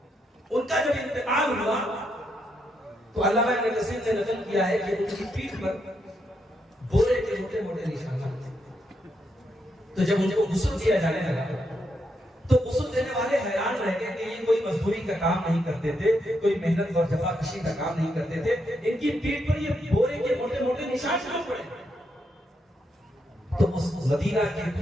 ان کا جب انتقال ہوا تو علامہ ابن کثیر نے نقل کیا ہے کہ ان کی پیٹھ پر بورے کے موٹے موٹے نشانات تھے۔ تو جب ان کو غسل دیا جانے لگا تو غسل دینے والے حیران رہ گئے کہ یہ کوئی مزدوری کا کام نہیں کرتے تھے، کوئی محنت اور جفاکشی کا کام نہیں کرتے تھے، ان کی پیٹھ پر یہ بورے کے موٹے موٹے نشان کیوں پڑے؟ تو اس مدینہ کے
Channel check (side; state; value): both; normal; correlation 0.80